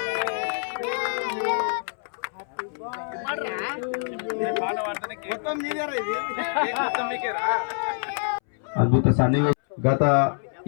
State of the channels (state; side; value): silent; right; 61 dB below the other